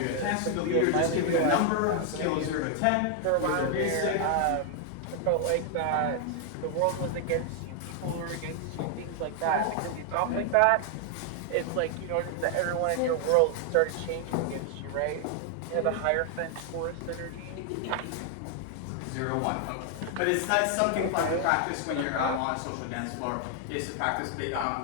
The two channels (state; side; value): different; both; correlation 0.00